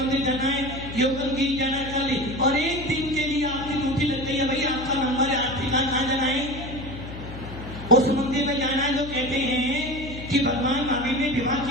जाना है, योगनगिरी जाना है, कल, और एक दिन के लिए आपकी ड्यूटी लग गई है। भाई आपका नंबर है, आप ठिकाना कहाँ जाना है? उस मंदिर में जाना है जो कहते हैं कि भगवान महावीर ने विवाह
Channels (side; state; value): left; noise; hum, 12 dB below the sound